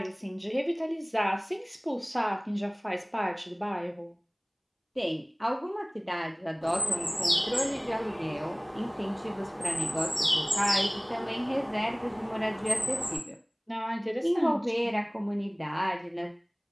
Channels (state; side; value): identical; both; correlation 1.00